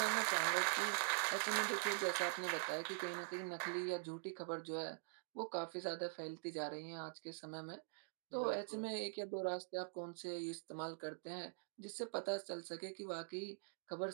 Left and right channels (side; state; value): left; silent; digital silence